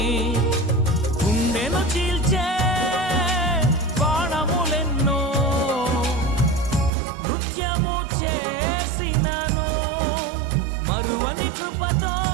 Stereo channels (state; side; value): drops out; left; at 6.9 s